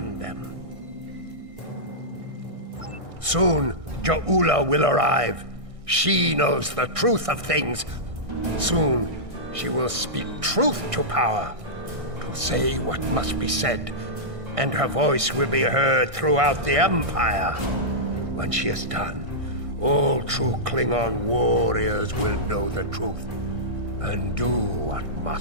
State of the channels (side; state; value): left; late; 1.6 ms